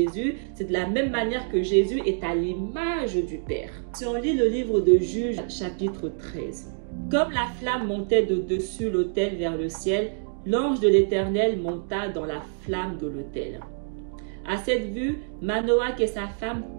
c'est de la même manière que Jésus est à l'image du Père. Si on lit le livre de Juges, chapitre 13. Comme la flamme montait de dessus l'autel vers le ciel, l'ange de l'Éternel monta dans la flamme de l'autel. À cette vue, Manoach et sa femme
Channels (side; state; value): left; silent; digital silence